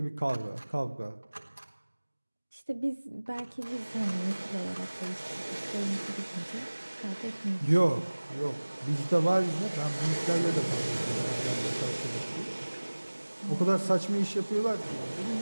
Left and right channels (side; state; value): both; inverted; correlation -1.00